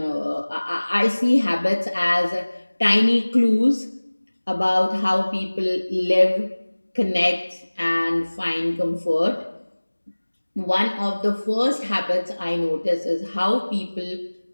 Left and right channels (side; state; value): both; inverted; correlation -1.00